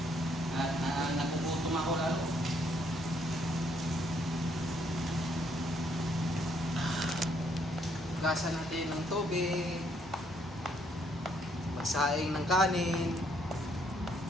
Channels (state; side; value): normal; both; correlation 0.70